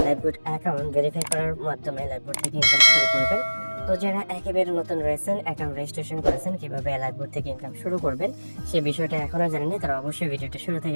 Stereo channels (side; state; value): both; inverted; correlation -1.00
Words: লাইফবোট অ্যাকাউন্ট ভেরিফাই করার মাধ্যমে লাইফবোট থেকে ইনকাম শুরু করবেন। তো যারা একেবারে নতুন রয়েছেন, অ্যাকাউন্ট রেজিস্ট্রেশন করেছেন, কিভাবে লাইফবোট থেকে ইনকাম শুরু করবেন সেই বিষয়টা এখনো জানেননি, তারা অবশ্যই ভিডিওটা শুরু